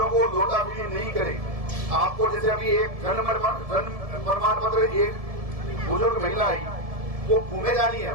को लोटाफिली नहीं करे। आपको जैसे अभी एक जन्म प्रमाण पत्र, एक बुजुर्ग महिला आई, वो घूमे जा रही है।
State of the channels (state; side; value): late; left; 1.7 ms